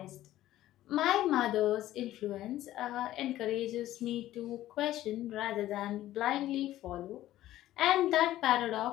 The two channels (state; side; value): quieter; right; 14.2 dB